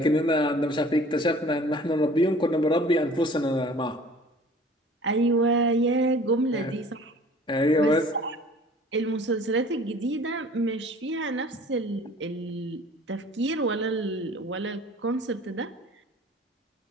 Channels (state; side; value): normal; both; correlation 0.48